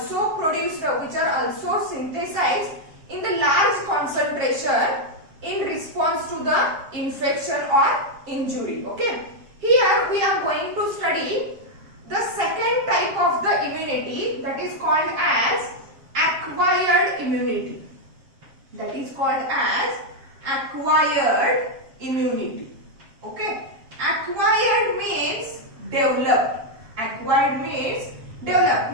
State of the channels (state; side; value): late; left; 7.6 ms